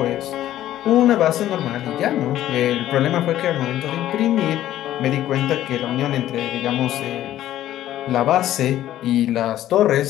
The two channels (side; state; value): right; quieter; 13.0 dB